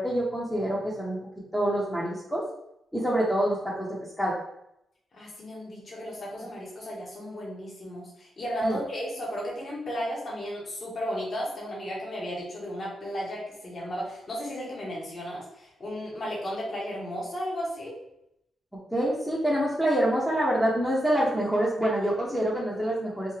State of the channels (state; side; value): normal; both; correlation 0.85